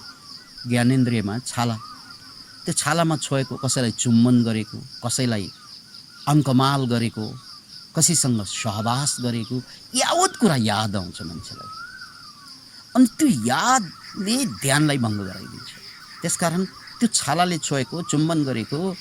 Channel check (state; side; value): identical; both; correlation 1.00